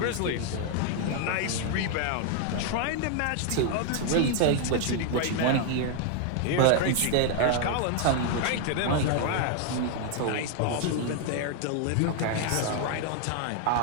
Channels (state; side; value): different; both; correlation 0.00